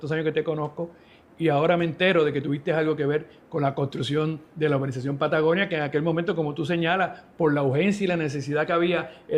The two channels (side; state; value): both; identical; correlation 1.00